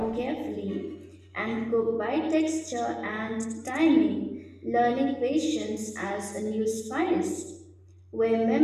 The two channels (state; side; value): identical; both; correlation 1.00